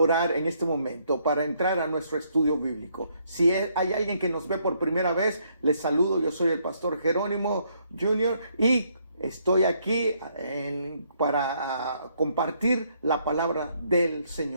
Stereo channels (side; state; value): both; inverted; correlation -0.71